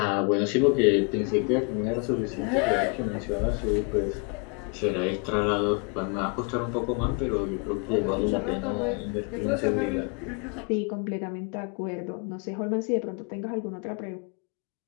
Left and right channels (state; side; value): quieter; right; 33.8 dB